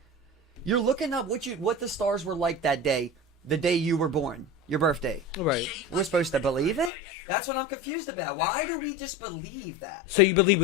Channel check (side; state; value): right; drops out; at 6.9 s